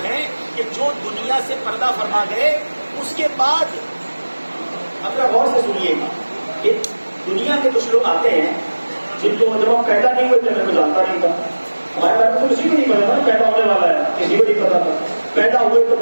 ہیں کہ جو دنیا سے پردہ فرما گئے، اس کے بعد اب غور سے سنیے گا کہ دنیا کے کچھ لوگ آتے ہیں جن کو جب ہم پیدا نہیں ہوئے تھے میں جانتا نہیں تھا، ہمارے بارے میں تو کسی کو نہیں پتا تھا پیدا ہونے والا ہے، کسی کو نہیں پتا تھا۔ پیدا ہوئے تو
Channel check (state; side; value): inverted; both; correlation -1.00